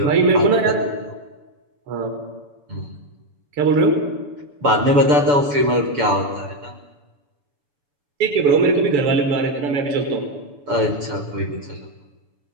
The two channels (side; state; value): left; late; 7.0 ms